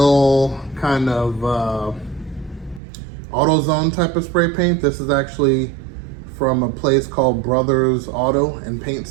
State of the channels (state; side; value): drops out; left; at 2.8 s